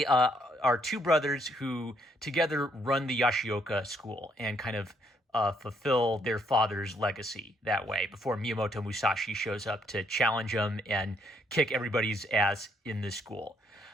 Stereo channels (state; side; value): normal; both; correlation 0.71